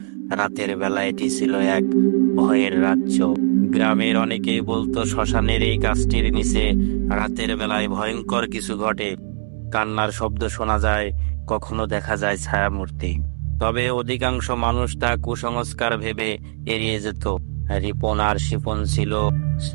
রাতের বেলা এটি ছিল এক ভয়ের রাজ্য। গ্রামের অনেকেই বলতো শ্মশানের এই গাছটির নিচে রাতের বেলায় ভয়ঙ্কর কিছু ঘটে। কান্নার শব্দ শোনা যায়, কখনো দেখা যায় ছায়ামূর্তি। তবে অধিকাংশ মানুষ তা কুসংস্কার ভেবে এড়িয়ে যেত। রিপন আর শিপন ছিল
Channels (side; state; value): left; silent; digital silence